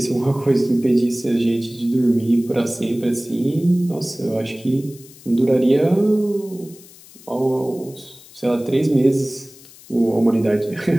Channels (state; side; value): noise; left; hiss, 22 dB below the sound